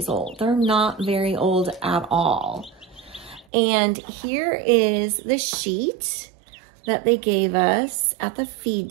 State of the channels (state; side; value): drops out; left; at 3.5 s